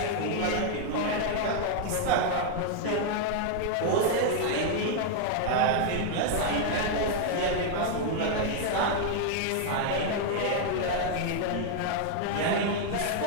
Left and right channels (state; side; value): different; both; correlation 0.00